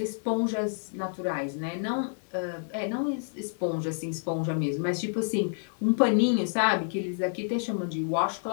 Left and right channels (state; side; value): silent; right; digital silence